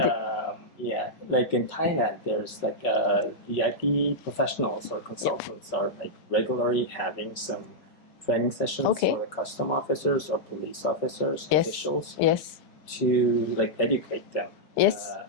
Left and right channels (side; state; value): right; late; 5.4 ms